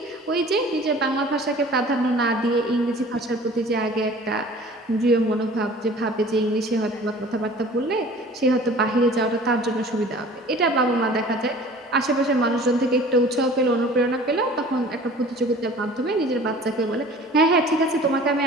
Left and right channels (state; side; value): normal; both; correlation 0.46